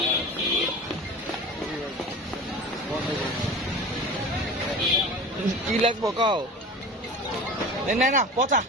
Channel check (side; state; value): both; normal; correlation 0.35